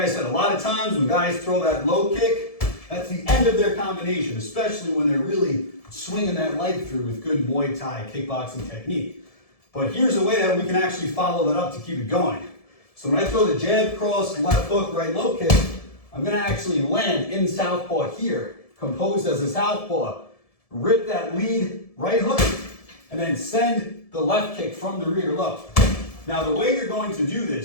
said, a lot of times when guys throw that low kick, that's the end of their combination, especially when they're really swinging that leg through with good Muay Thai kickboxing technique. But here's a way that we can actually follow that up to keep it going. So when I throw the jab, cross, left hook, right low kick, I'm going to actually land in southpaw here, composed as a southpaw, rip that lead right hook, and then send the left kick from the rear low. Now the way you're going to do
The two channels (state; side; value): late; right; 1.7 ms